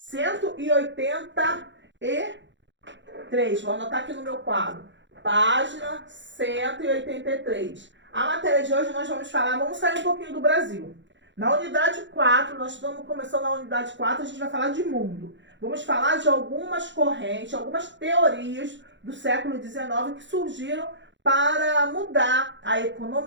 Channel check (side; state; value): left; late; 0.54 ms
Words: Vou anotar aqui no meu quadro. Página 183. A matéria de hoje nós vamos sair um pouquinho do Brasil. Na unidade 4, nós estamos começando na unidade 4, a gente vai falar de mundo. Vamos falar de algumas correntes, algumas teorias do século XIX que surgiram para mudar a